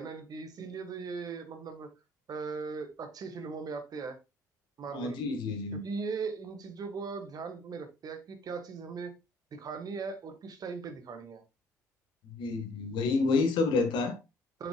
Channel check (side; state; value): both; normal; correlation 0.57